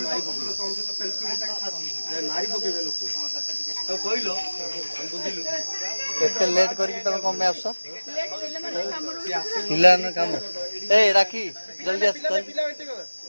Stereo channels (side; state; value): both; inverted; correlation -1.00